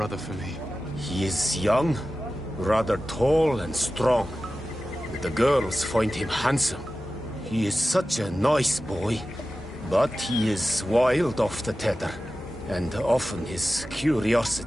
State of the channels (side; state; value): both; normal; correlation 0.94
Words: for me? He is young, rather tall and strong. The girls find him handsome. He is such a nice boy, but he is wild off the tether, and often his